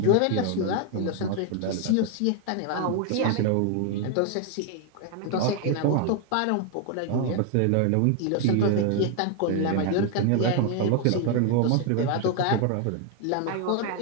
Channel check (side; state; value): both; different; correlation 0.01